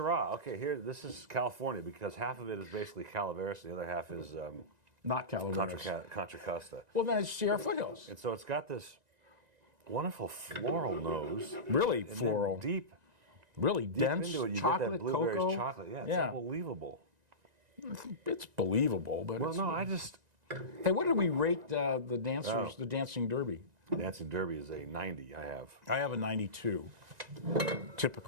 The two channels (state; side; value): late; left; 1.9 ms